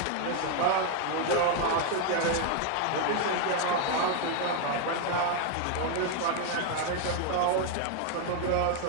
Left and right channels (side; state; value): both; different; correlation 0.01